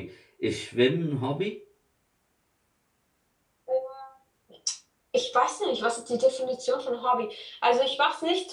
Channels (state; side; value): identical; both; correlation 1.00